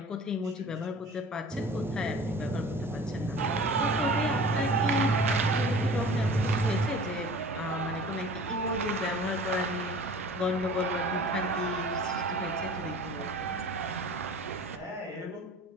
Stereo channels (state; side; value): normal; both; correlation 0.43